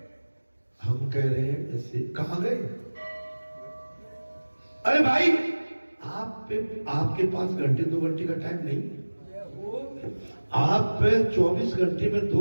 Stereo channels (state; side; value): inverted; both; correlation -1.00